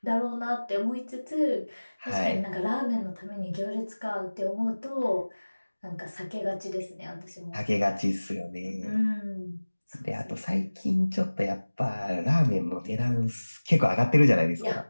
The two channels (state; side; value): inverted; both; correlation -1.00